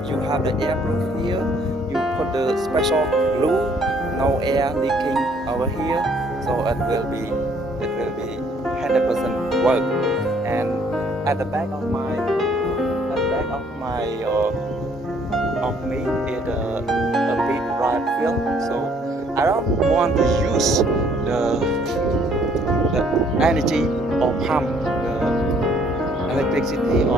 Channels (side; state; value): both; normal; correlation 0.63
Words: you have the airproof here, you put the special glue, no air leaking over here, so it will be 100% work. And at the back of me is a big rod field, so I don't want to use the energy or pump, the electricity